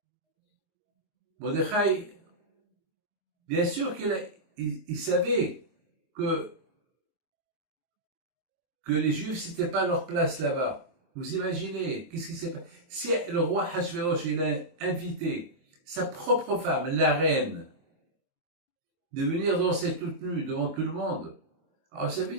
Mordechai, bien sûr qu'il savait que les Juifs, c'était pas leur place là-bas. Vous imaginez, qu'est-ce qui s'est passé? Si le roi Hachvérosh, il a invité sa propre femme, la reine, de venir danser toute nue devant tout le monde, alors ça veut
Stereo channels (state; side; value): late; left; 24 ms